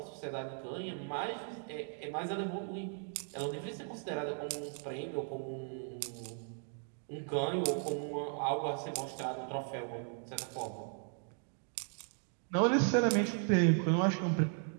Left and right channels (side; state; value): left; silent; 53 dB below the other